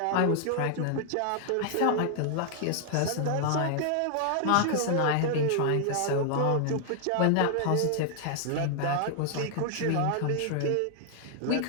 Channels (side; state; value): both; different; correlation 0.00